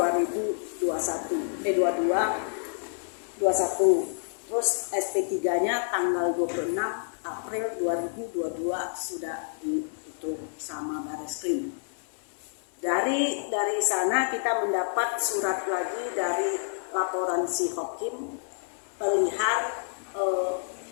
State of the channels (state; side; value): silent; right; digital silence